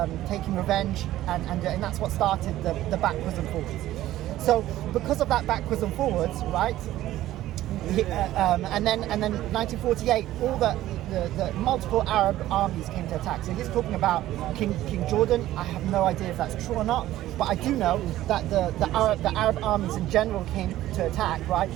taking revenge, and that's what started the backwards and forwards. So because of that backwards and forwards, right? And then 1948, all the multiple Arab armies came to attack. So he's talking about King Jordan. I have no idea if that's true or not, but I do know that the Arab armies in general came to attack. Right?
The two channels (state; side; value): quieter; left; 14.5 dB